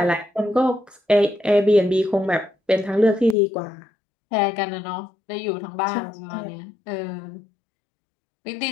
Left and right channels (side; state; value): right; drops out; at 3.4 s